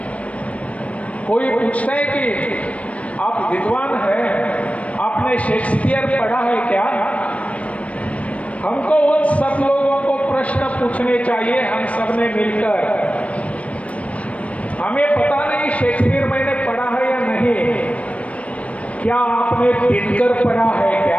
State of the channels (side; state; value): right; late; 0.065 ms